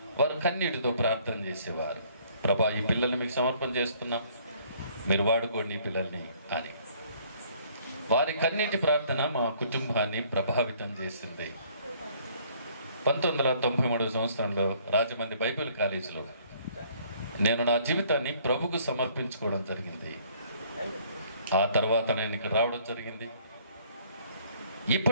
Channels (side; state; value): both; inverted; correlation -0.60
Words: వారు కన్నీటితో ప్రార్థన చేసేవారు. ప్రభా, ఈ పిల్లల్ని మీకు సమర్పణ చేస్తున్నాం, మీరు వాడుకోండి ఈ పిల్లల్ని అని. వారి కన్నీటి ప్రార్థన మా కుటుంబాన్ని ప్రభావితం చేసింది. 1993 సంవత్సరంలో రాజమండ్రి బైబిల్ కాలేజీలో నేను నా జీవితాన్ని ప్రభుకు సమర్పించుకోవడం జరిగింది. ఆ తర్వాత నేను ఇక్కడ రావడం జరిగింది.